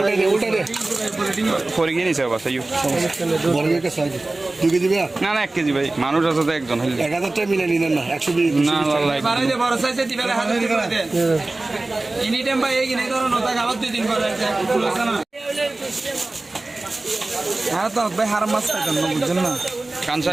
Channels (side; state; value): left; quieter; 3.0 dB